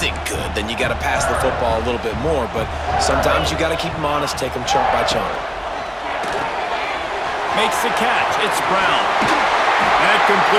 good, then you got to pass the football a little bit more. But sometimes you got to keep them honest, take them chunk by chunk. Makes the catch. It's Brown. That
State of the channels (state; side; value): identical; both; correlation 1.00